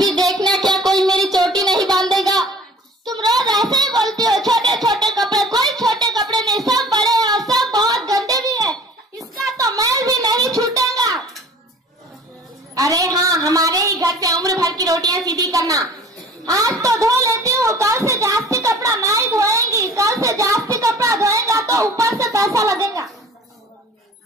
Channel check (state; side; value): normal; both; correlation 0.46